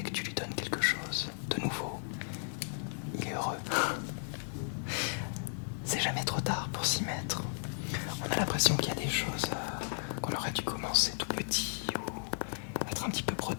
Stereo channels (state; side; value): silent; right; digital silence